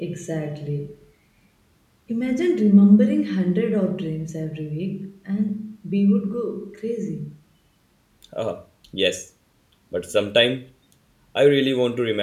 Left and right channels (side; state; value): both; identical; correlation 1.00